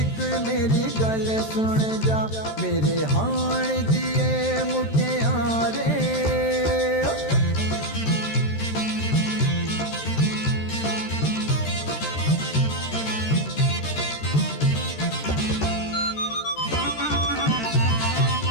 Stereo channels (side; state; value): right; late; 13 ms